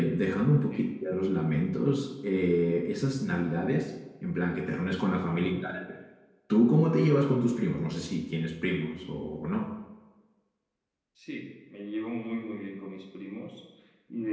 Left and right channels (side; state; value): both; identical; correlation 1.00